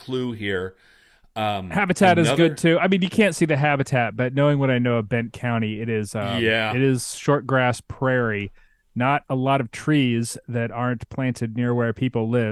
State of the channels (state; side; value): identical; both; correlation 1.00